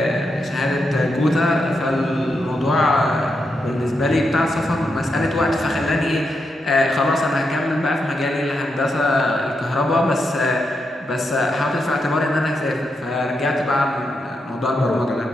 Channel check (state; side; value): normal; both; correlation 0.84